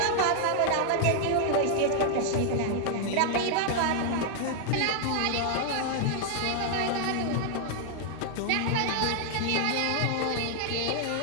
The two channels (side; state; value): both; different; correlation 0.00